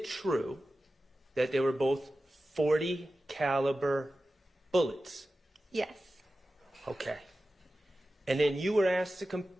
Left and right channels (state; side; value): normal; both; correlation 0.94